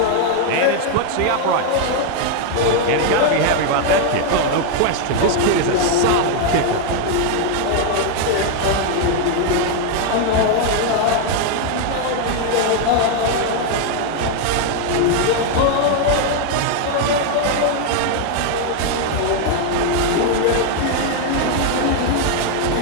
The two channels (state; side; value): different; both; correlation 0.00